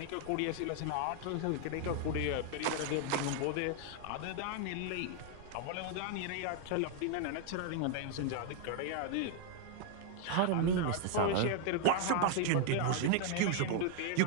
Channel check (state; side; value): different; both; correlation 0.00